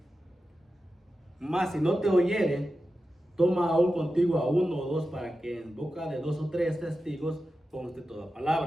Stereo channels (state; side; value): normal; both; correlation 0.92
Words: Mas si no te oyere, toma aún contigo a uno o dos, para que en boca de 2 o 3 testigos conste toda